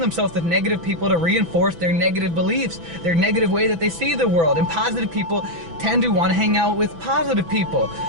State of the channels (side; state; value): left; late; 6.0 ms